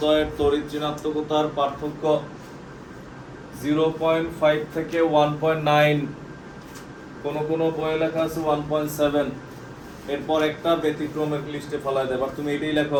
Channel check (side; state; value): both; identical; correlation 1.00